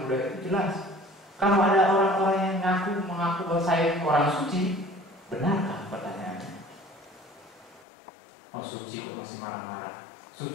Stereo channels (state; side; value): drops out; right; at 7.9 s